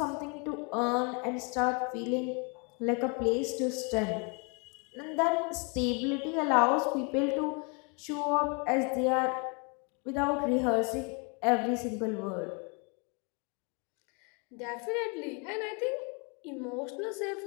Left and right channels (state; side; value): quieter; right; 34.2 dB